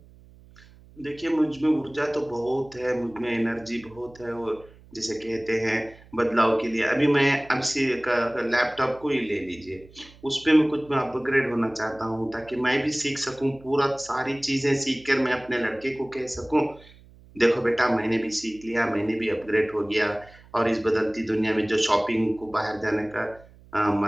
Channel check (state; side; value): noise; right; hum, 24 dB below the sound